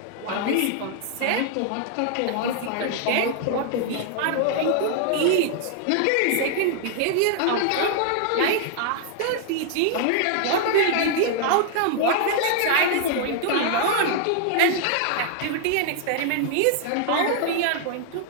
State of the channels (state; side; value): different; both; correlation 0.00